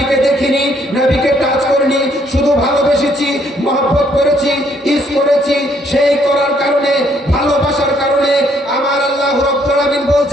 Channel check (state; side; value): normal; both; correlation 0.68